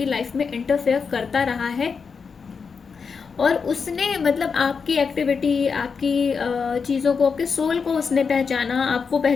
लाइफ में इंटरफेयर करता रहा है, और उसने मतलब आपकी एक्टिविटी, आपकी चीज़ों को, आपके सोल को उसने पहचाना, आपको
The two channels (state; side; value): quieter; right; 5.6 dB